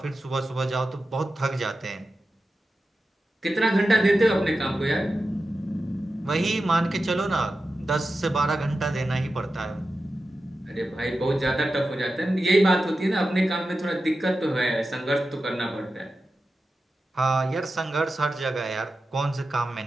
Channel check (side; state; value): both; normal; correlation 0.92